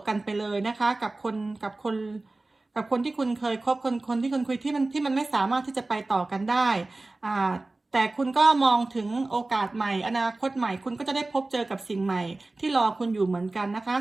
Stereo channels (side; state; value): left; quieter; 3.1 dB